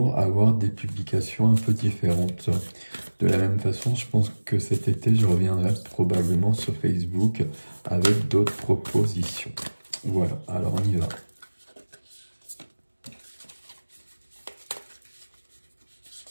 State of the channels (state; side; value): inverted; both; correlation -1.00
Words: avoir des publications un peu différentes. De la même façon, je pense que cet été, je reviendrai probablement sur Facebook avec d'autres propositions. Voilà, alors on y va.